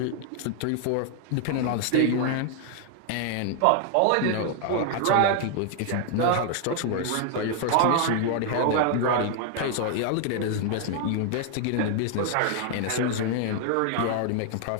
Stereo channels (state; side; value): different; both; correlation 0.00